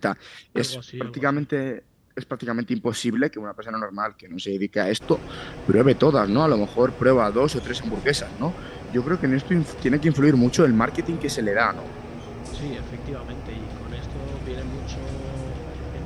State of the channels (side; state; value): both; identical; correlation 1.00